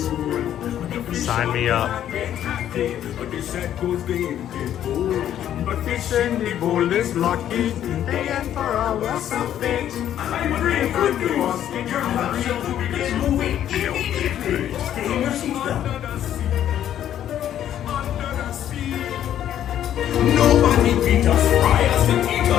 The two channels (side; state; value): right; quieter; 10.9 dB